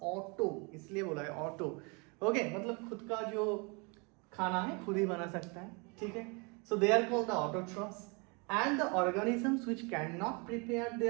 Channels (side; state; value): left; quieter; 31.4 dB